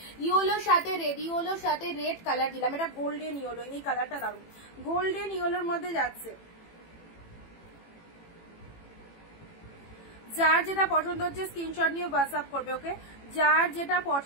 ইয়েলোর সাথে রেড, ইয়েলোর সাথে রেড কালার দিলাম, এটা গোল্ডেন ইয়েলো, এই কালারটা দারুণ, গোল্ডেন ইয়েলোর মধ্যে যাচ্ছে। যার যেটা পছন্দ হচ্ছে স্ক্রিনশট নিয়ে হোয়াটসঅ্যাপ করবে। ওকে, যার যেটা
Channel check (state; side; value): late; right; 18 ms